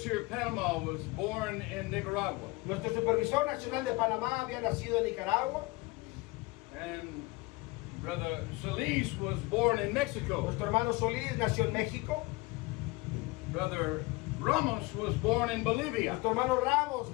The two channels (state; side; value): quieter; right; 23.1 dB